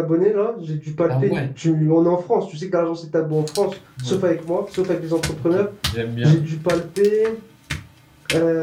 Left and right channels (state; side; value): identical; both; correlation 1.00